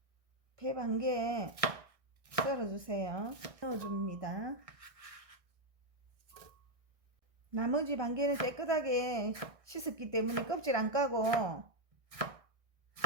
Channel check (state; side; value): late; left; 1.6 ms